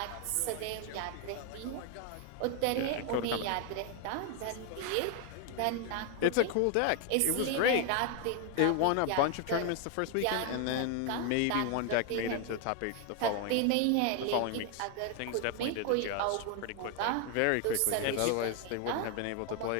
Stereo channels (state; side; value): different; both; correlation 0.00